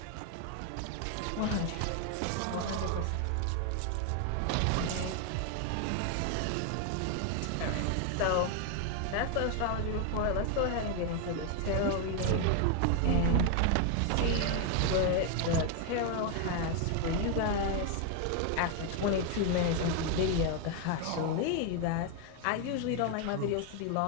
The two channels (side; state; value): both; different; correlation 0.01